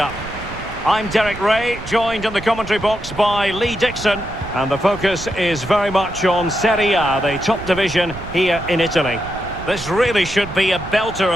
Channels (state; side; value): noise; right; rumble, 12 dB below the sound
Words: I'm Derek Ray, joined in the commentary box by Lee Dixon, and the focus is very much on Serie A, the top division here in Italy. This really should be a belter